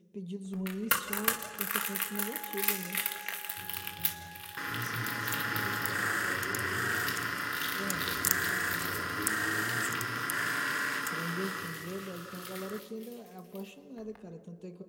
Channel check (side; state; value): both; identical; correlation 1.00